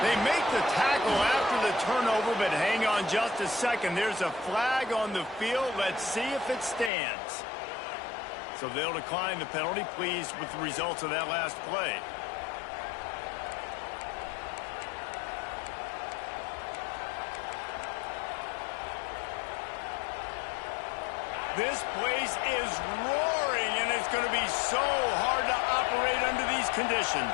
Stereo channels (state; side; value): drops out; right; at 6.9 s